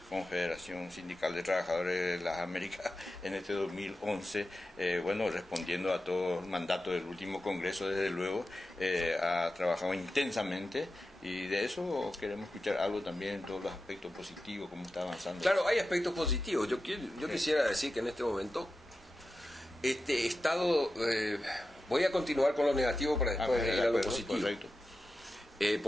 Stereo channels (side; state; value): both; normal; correlation 0.92